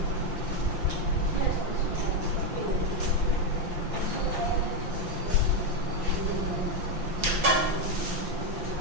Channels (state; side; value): late; left; 5.8 ms